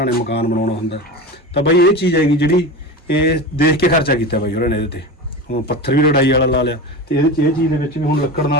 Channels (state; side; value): normal; both; correlation 0.26